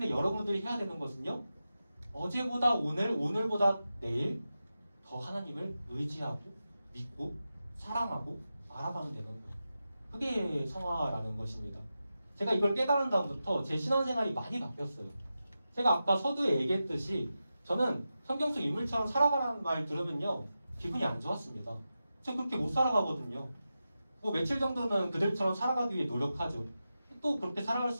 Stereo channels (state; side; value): inverted; both; correlation -0.91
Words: 여러분들이 해야 되는 것은요, 어제보다 오늘, 오늘보다 내일 더 하나님을 의지하고 믿고 사랑하고 알아가면 되는 거예요. 그게 성화라는 것입니다. 제가 이걸 깨달은 다음부터 제 신앙생활이 많이 바뀌었어요. 제가 아까 서두에 얘기했듯이 저는 성경 속 인물처럼 살아가라는 말 들으면요 기분이 안 좋았습니다. 저 그렇게 못 살아가거든요. 뭐 며칠 정도는 그들처럼 살아가기 위해 노력하죠. 또 그렇게 살아갈